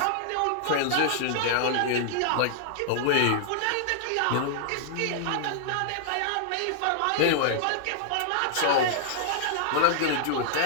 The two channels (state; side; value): different; both; correlation -0.01